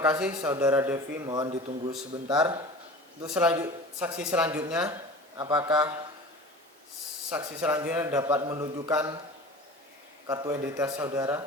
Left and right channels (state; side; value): normal; both; correlation 0.38